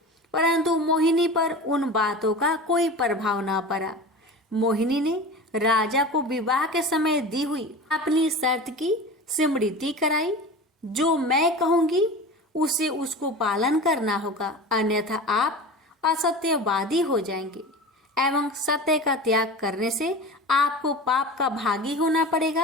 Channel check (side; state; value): both; normal; correlation 0.33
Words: परंतु मोहिनी पर उन बातों का कोई प्रभाव न पड़ा। मोहिनी ने राजा को विवाह के समय दी हुई अपनी शर्त की स्मृति कराई। जो मैं कहूंगी उसे उसको पालन करना होगा, अन्यथा आप असत्यवादी हो जाएंगे एवं सत्य का त्याग करने से आपको पाप का भागी होना